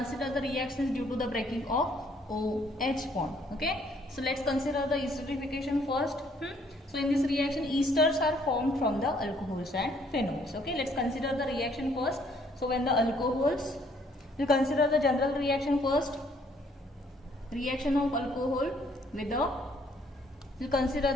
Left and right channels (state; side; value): normal; both; correlation 0.65